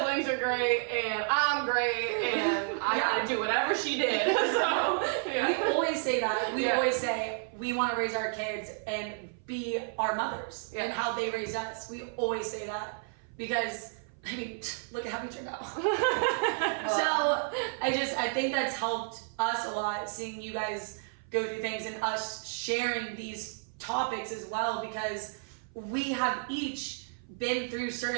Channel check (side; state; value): left; silent; 56 dB below the other